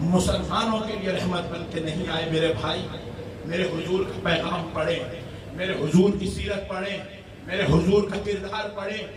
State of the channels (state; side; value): identical; both; correlation 1.00